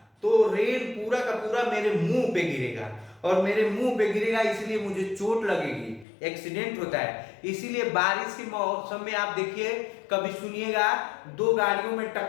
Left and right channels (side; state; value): right; drops out; at 6.1 s